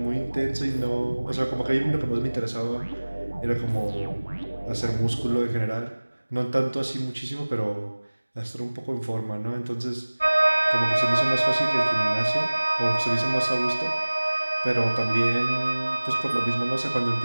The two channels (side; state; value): both; inverted; correlation -1.00